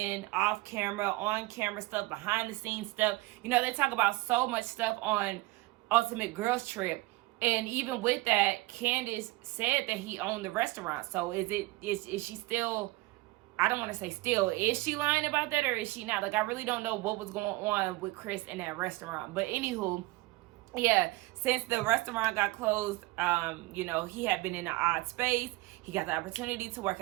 off camera, on camera stuff, behind the scenes stuff. You know, they talk about so much stuff on Ultimate Girls Trip. And even with that, Candace said that he owned the restaurant. So is she still, I don't want to say still, is she lying about that or is she not? Like, I really don't know what was going on with Chris in that restaurant. But anywho, yeah, since the restaurant got closed, you know, he had been in an odd space. He got the opportunity to work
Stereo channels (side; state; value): left; quieter; 20.9 dB